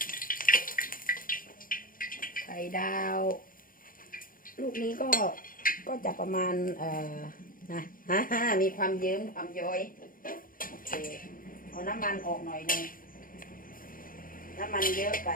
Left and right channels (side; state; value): right; late; 0.40 ms